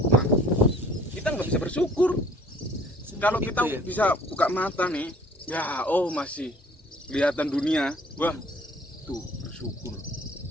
nah kita nggak bisa bersyukur. Kalau kita Itu ya. bisa buka mata nih, ya oh masih kelihatan dunia, wah tuh bersyukur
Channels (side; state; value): both; normal; correlation 0.54